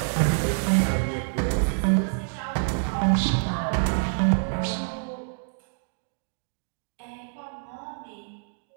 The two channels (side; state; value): left; silent; 60 dB below the other